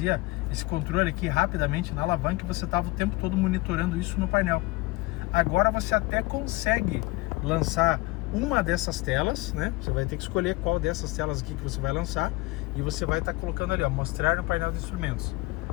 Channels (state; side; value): quieter; right; 21.9 dB